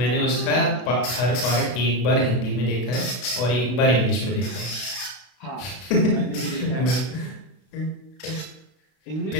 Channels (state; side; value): late; right; 32 ms